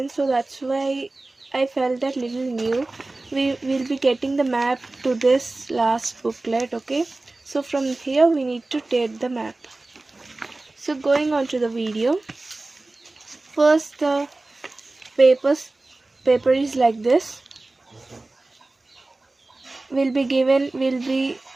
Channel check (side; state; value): left; quieter; 3.0 dB